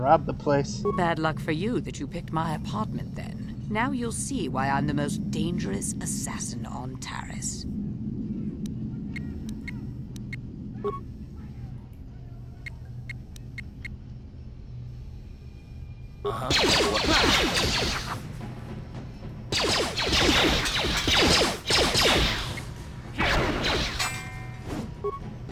the place. Bad luck for you that you picked my apartment then. Now you'll see why I'm the most dangerous assassin on Taris.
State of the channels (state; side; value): identical; both; correlation 1.00